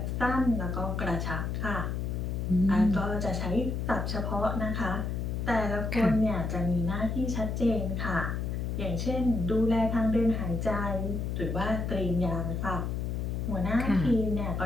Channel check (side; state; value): left; noise; hum, 2 dB below the sound